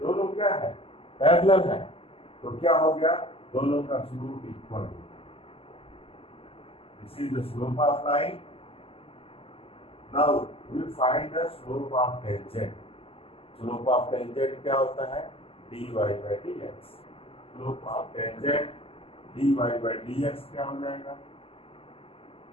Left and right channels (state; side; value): late; right; 0.27 ms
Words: क्या है? पैरेलल है। तो क्या हो गया? दोनों का स्लोप इक्वल हो गया। This is the slope of line. Now we find the slope of tangent. Slope of tangent क्या होता है? dy by dx। Slope of tangent dy by dx क्या हो जाएगा?